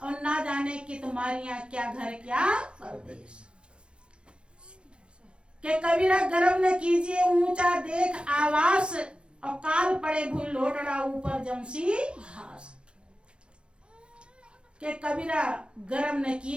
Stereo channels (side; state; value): left; late; 0.055 ms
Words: और ना जाने कि तुम्हारियां क्या घर क्या परदेश। कि कबीरा गर्व न कीजिए ऊंचा देख आवास, और काल पड़े भूल लोटड़ा ऊपर जमसी घास। कि कबीरा गर्व न